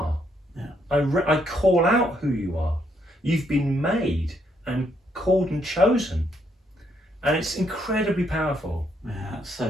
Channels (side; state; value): both; normal; correlation 0.73